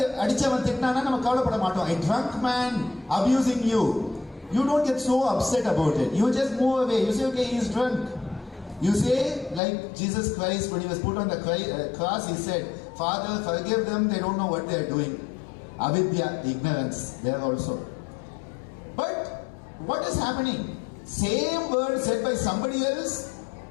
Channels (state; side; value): drops out; right; at 9.6 s